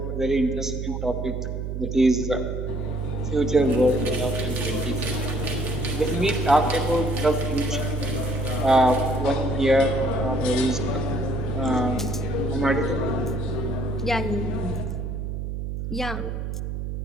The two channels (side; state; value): right; noise; hum, 4 dB below the sound